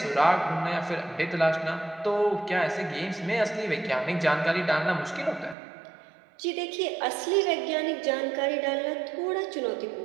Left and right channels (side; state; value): left; drops out; at 5.6 s